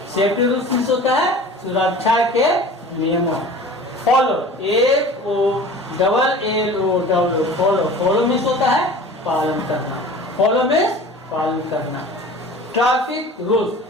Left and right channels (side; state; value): both; normal; correlation 0.41